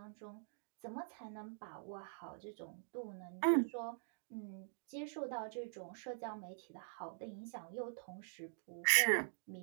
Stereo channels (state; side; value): silent; left; digital silence